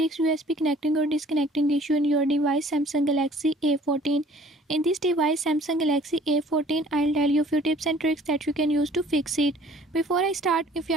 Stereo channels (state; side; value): normal; both; correlation 0.54